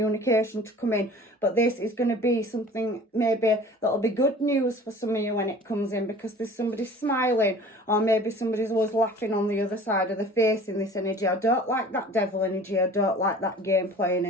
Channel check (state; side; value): normal; both; correlation 0.45